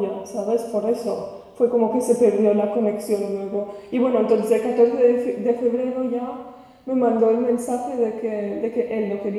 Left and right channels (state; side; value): identical; both; correlation 1.00